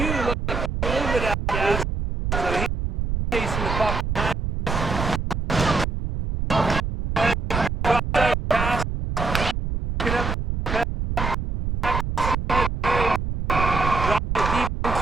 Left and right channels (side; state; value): right; noise; rumble, 3 dB below the sound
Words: looks like a little bit out of gas. So he's chasing the puck behind. Pass. Pick it up. Drop it deep